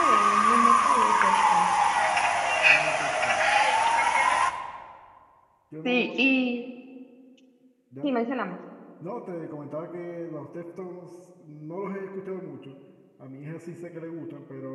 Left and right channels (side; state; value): both; identical; correlation 1.00